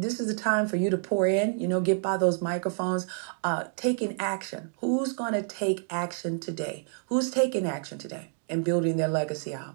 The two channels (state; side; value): silent; left; 59 dB below the other